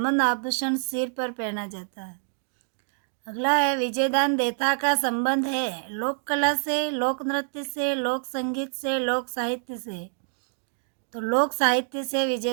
आभूषण सिर पर पहना जाता है। अगला है, विजयदान देथा का संबंध है लोक कला से, लोक नृत्य से, लोक संगीत से, लोक साहित्य से। तो लोक साहित्य से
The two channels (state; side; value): silent; left; 60 dB below the other